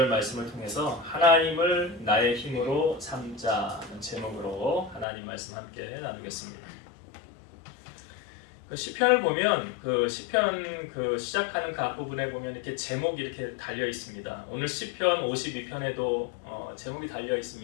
말씀을 통해서 하나님을 나의 힘으로 삼자는 제목으로 하나님 말씀 함께 나누겠습니다. 시편을 보면 시편 시작하는 그 앞부분에 보면 이렇게 제목이 이렇게 달려 있습니다. 오늘 시편 52편에도 제목이 달려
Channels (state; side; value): drops out; right; at 5.1 s